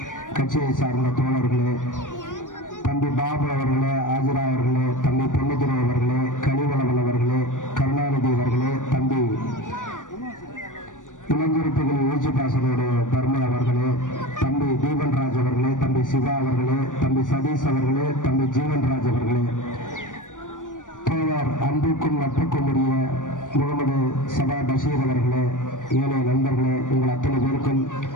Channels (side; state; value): right; late; 0.87 ms